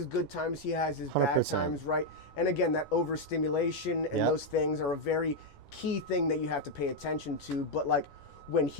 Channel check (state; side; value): late; right; 11 ms